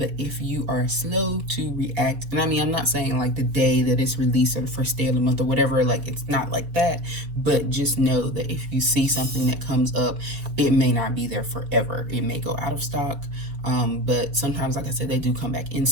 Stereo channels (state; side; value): late; left; 4.2 ms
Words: if you are slow to react, and I mean, I'm not saying like the day that it's released or the first day of the month or whatever, like it's not like that, but just know that if you see something that comes up, it may not be there forever. It may go out of stock. But sometimes, like I said, they do come back in